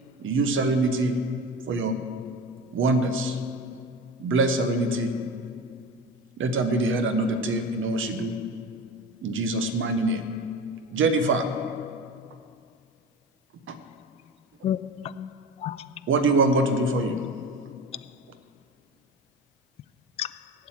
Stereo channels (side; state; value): both; normal; correlation 0.30